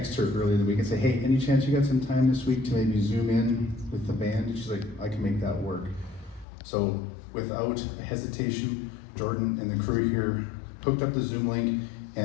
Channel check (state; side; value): drops out; right; at 6.5 s